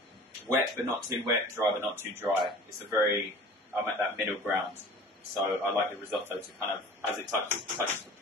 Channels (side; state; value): both; normal; correlation 0.43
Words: wet but not too wet, dry but not too dry. I'm at that middle ground. So I like the risotto to kind of, as it touches the